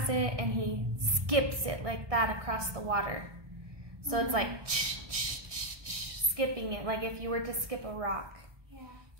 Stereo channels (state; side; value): late; left; 1.6 ms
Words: it and he skips it like that across the water. So it's like skipping it, like if you were to skip a rock. Yeah.